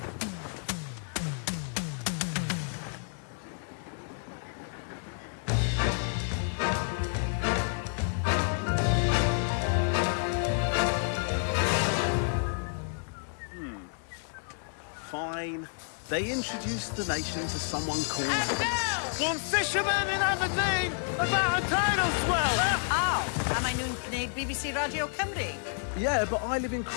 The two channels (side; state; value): right; silent; 58 dB below the other